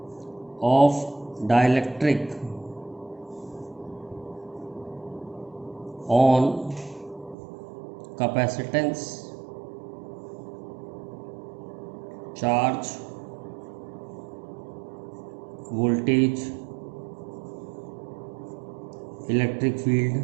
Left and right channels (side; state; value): left; drops out; at 7.4 s